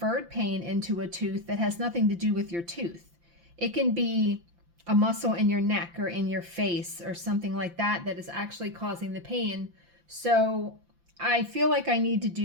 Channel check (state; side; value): late; left; 5.8 ms